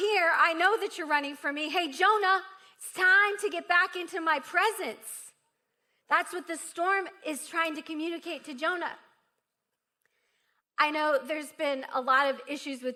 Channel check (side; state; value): both; identical; correlation 1.00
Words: I know that you're running from me. Hey, Jonah, it's time to get back into my presence. That's what the storm is trying to communicate to Jonah. I know there's been a lot of issues